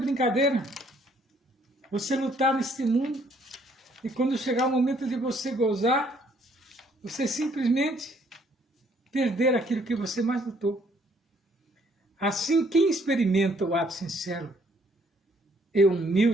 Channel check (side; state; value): both; normal; correlation 0.65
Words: Você lutar neste mundo e quando chegar o momento de você gozar, você simplesmente perder aquilo que você mais lutou. Assim, quem experimenta o ato sincero e